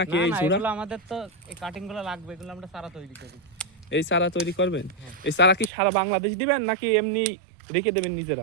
নাকি? এই চূড়া এগুলো আমাদের তো এই কাটিংগুলো লাগবে, এগুলো আমরা চারা তৈরি করি। এই চারা তৈরি করবেন? এই চারা কি সারা বাংলাদেশ দিবেন নাকি এমনি রেখে দেবেন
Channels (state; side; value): drops out; left; at 5.7 s